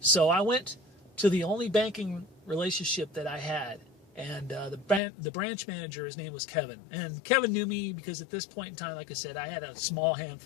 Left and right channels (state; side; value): drops out; right; at 5.0 s